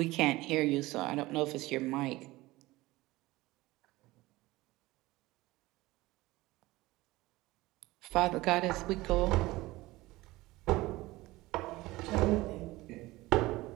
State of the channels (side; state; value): left; quieter; 19.4 dB